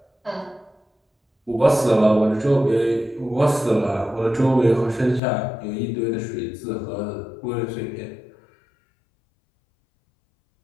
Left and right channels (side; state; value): right; drops out; at 5.2 s